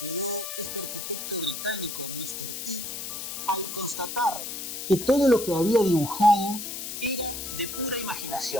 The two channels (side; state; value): left; noise; hiss, 6 dB below the sound